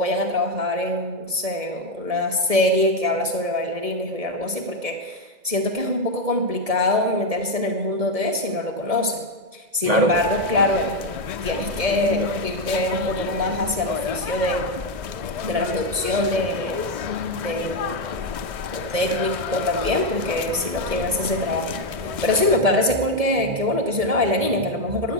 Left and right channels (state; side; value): late; left; 1.7 ms